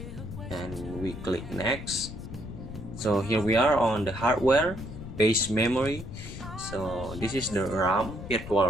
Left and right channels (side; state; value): left; noise; rumble, 10 dB below the sound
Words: and we click next. So here we are on the hardware base memory. So this is the RAM, virtual